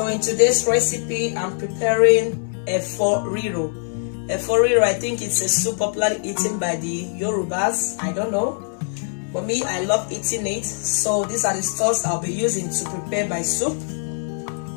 in today's recipe, I'm preparing Riro. Riro, I think it's a soup popularly eaten by the Yorubas. I don't know. For me, I love eating it. So these are the stuffs I'll be using to prepare my soup.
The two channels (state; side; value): silent; right; 64 dB below the other